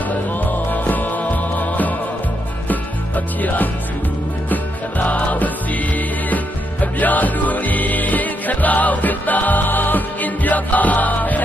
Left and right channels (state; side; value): normal; both; correlation 0.79